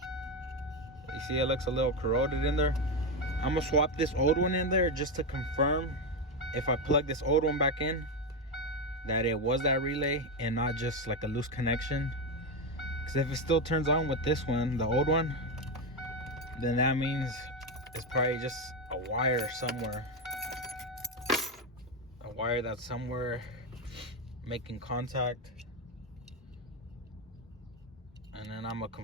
You see it looks a little corroded in there. I'm gonna swap this old one in there just to confirm, if I plug this old one back in, that it was that relay and not just like a loose connection. Because if it still turns on with this one, the old one, then that means it's probably just a wire somewhere. A wire that's somewhere making contact. And then I'm gonna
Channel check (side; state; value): both; normal; correlation 0.10